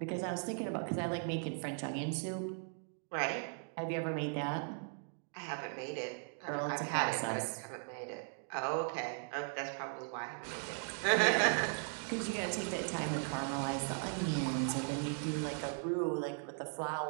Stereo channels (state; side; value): silent; left; 52 dB below the other